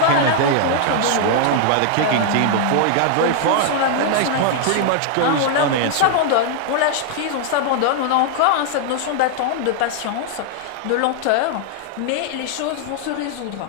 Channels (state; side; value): different; both; correlation -0.01